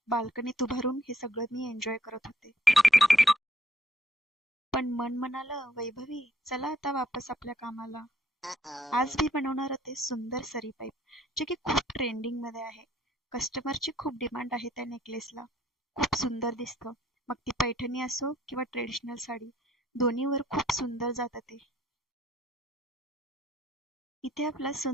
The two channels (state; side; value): normal; both; correlation 0.67